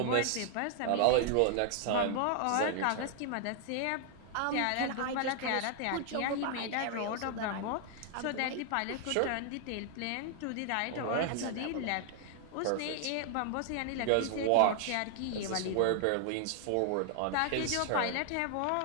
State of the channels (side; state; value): both; different; correlation 0.00